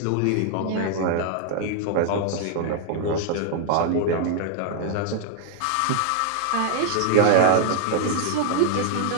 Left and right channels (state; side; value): different; both; correlation 0.00